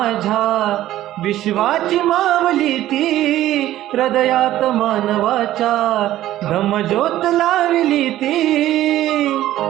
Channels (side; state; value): left; quieter; 13.9 dB